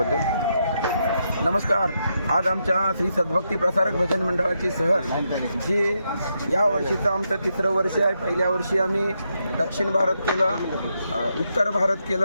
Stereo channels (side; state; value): both; inverted; correlation -0.82